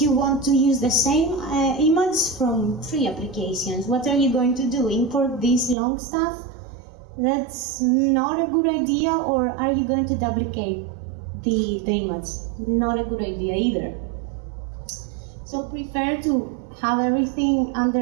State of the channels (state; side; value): drops out; left; at 5.8 s